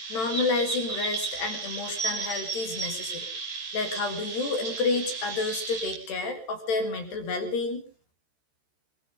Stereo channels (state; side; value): late; right; 13 ms